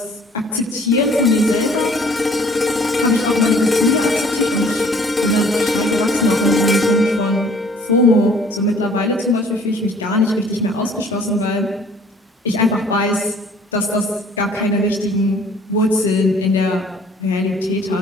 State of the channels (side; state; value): both; normal; correlation 0.54